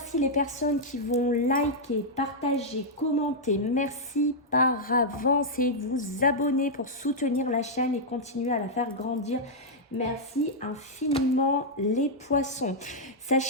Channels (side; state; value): both; normal; correlation -0.06